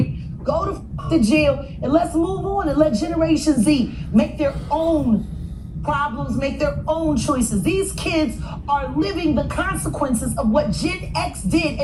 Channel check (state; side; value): identical; both; correlation 1.00